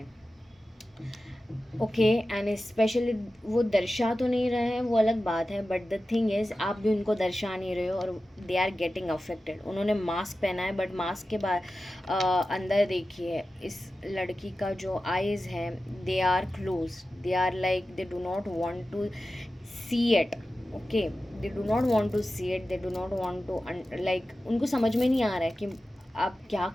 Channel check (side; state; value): both; normal; correlation 0.94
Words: ओके एंड स्पेशली वो दर्शा तो नहीं रहे हैं, वो अलग बात है, बट द थिंग इज़ आप भी उनको दर्शा नहीं रहे हो और दे आर गेटिंग अफेक्टेड। उन्होंने मास्क पहना है बट मास्क के बाद अंदर देखिए इस लड़की का जो आईज़ है they are close, they are like they do not want to see it. Okay, they do not want to see it, they do not want to like उनको समझ में नहीं आ रहा है कि आप क्या